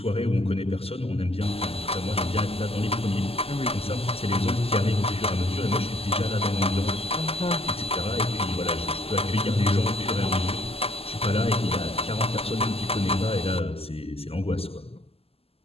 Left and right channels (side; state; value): right; late; 0.29 ms